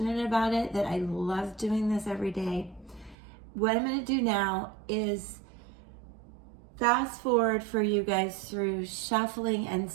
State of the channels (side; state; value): left; drops out; at 3.2 s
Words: about it that I love doing this every day. What I'm going to do now is fast forward for you guys through shuffling and